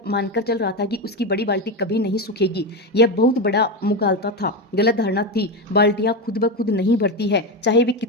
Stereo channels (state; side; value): normal; both; correlation 0.14